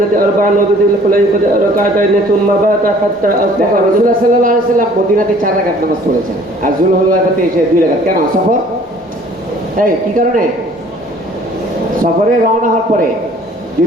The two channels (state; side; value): normal; both; correlation 0.54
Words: أربعا وبذي الحليفة ركعتين ثم بات حتى أصبح দেখো রাসূলুল্লাহ সাল্লাল্লাহু আলাইহি ওয়াসাল্লাম মদিনাতে 4 রাকাত নামাজ পড়েছেন আর যুলহুলাইফাতে এসে 2 রাকাত। কেন? সফর। এই কি কারণে? সফরে রওনা হওয়ার পরে